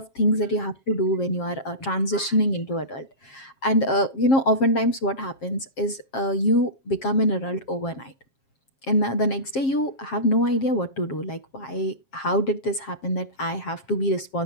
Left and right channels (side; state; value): right; late; 7.4 ms